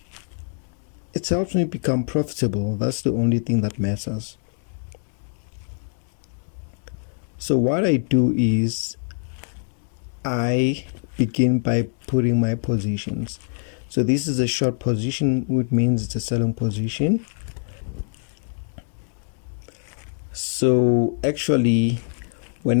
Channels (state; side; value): silent; right; digital silence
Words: it helps me become profitable. That's the only thing that matters. So what I do is I begin by putting my positions. So this is a short position, which means it's a selling position. So actually,